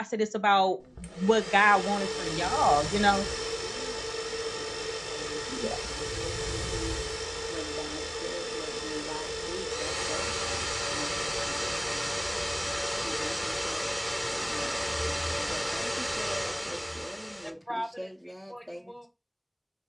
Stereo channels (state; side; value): identical; both; correlation 1.00